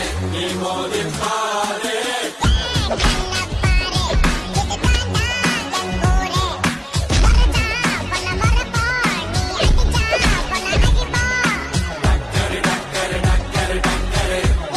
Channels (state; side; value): identical; both; correlation 1.00